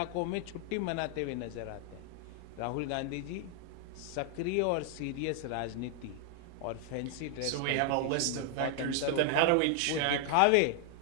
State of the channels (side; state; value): both; different; correlation 0.00